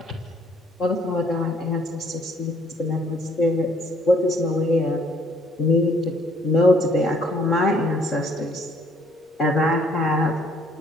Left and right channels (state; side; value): normal; both; correlation 0.63